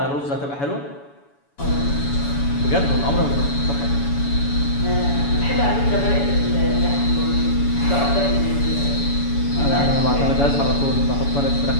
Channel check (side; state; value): right; late; 7.1 ms